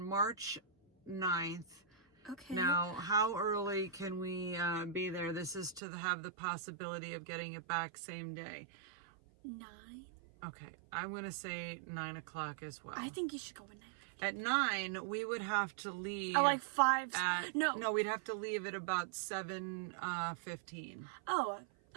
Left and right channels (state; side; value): drops out; left; at 5.8 s